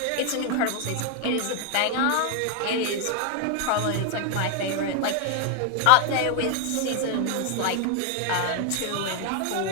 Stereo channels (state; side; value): different; both; correlation 0.00